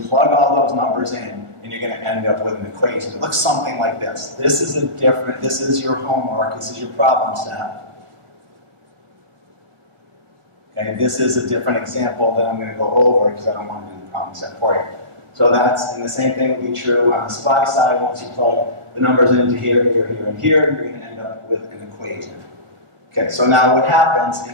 all those numbers in, and you're going to end up with an equation. It looks something like this. This is your homework, this is your problem set. Okay, this is a different example that I'm going to go over because I don't want to do the problem set for you. So and the same thing would be true on the supply side. Once you plug the numbers into here, here, here, and here, you're going to end up with an equation. Okay, so now what happens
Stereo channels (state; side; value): late; left; 1.5 ms